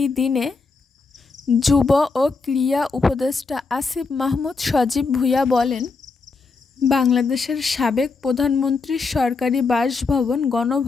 দিনে যুব ও ক্রীড়া উপদেষ্টা আসিফ মাহমুদ সজীব ভূঁইয়া বলেন, বাংলাদেশের সাবেক প্রধানমন্ত্রীর সরকারি বাসভবন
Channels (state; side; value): quieter; right; 4.3 dB